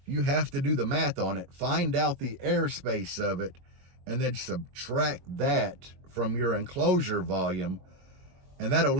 you have to do the math on it, find out the airspace of it, and then subtract that from your enclosure volume, and that'll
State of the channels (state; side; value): late; left; 22 ms